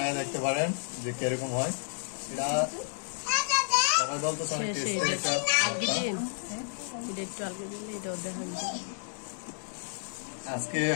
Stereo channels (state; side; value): silent; right; digital silence